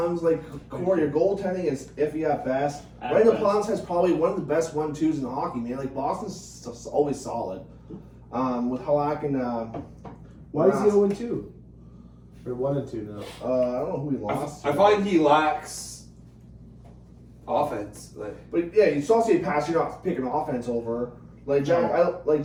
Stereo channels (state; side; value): identical; both; correlation 1.00